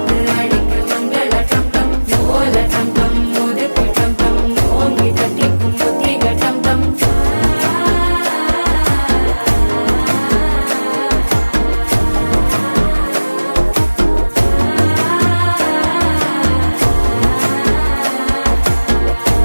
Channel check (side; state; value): both; inverted; correlation -1.00